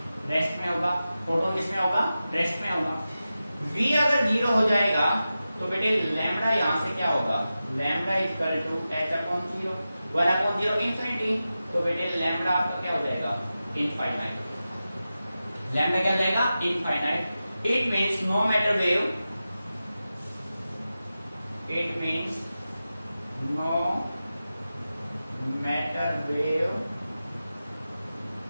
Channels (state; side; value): inverted; both; correlation -0.93